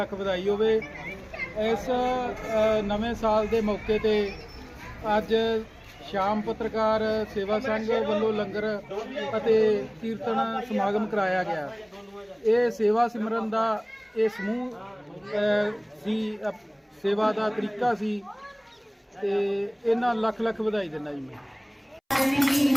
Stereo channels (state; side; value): identical; both; correlation 1.00